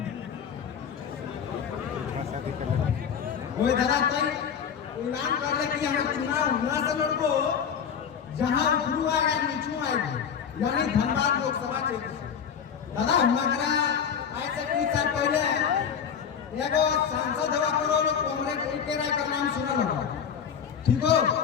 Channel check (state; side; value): quieter; right; 7.5 dB